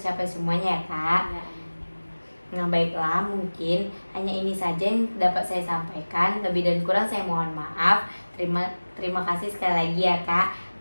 semuanya ya Kak. Nah, baiklah, mungkin hanya ini saja yang dapat saya sampaikan. Lebih dan kurang saya mohon maaf. Terima kasih sekali lagi ya Kak.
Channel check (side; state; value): both; inverted; correlation -1.00